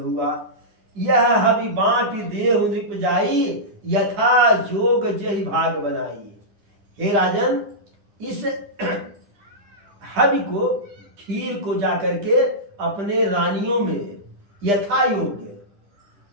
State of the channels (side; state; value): left; late; 10 ms